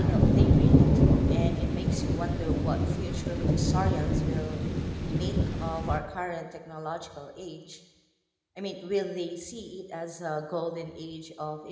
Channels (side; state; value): both; identical; correlation 1.00